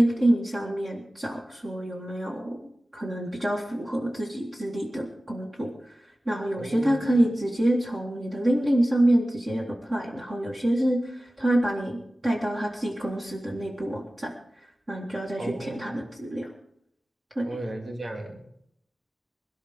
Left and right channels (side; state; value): both; normal; correlation 0.96